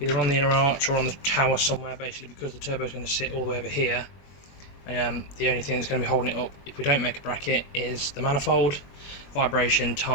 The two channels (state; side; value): late; right; 21 ms